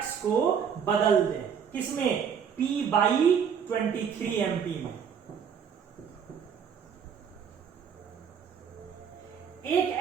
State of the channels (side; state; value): left; quieter; 7.4 dB